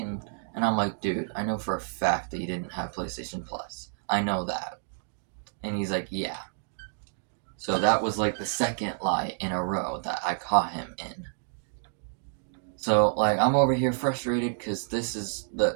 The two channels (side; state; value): left; silent; digital silence